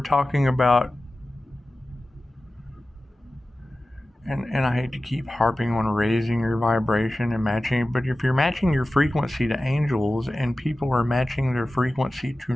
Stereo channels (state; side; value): normal; both; correlation 0.95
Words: about, and I hate to keep harping on raising your vibration and matching, but if you're matching your frequency to angels and people are matching their frequency to